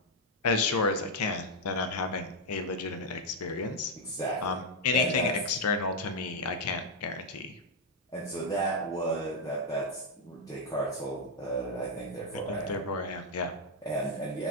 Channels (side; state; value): both; normal; correlation 0.00